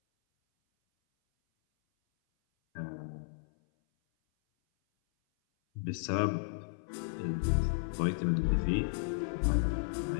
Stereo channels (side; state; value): right; silent; 55 dB below the other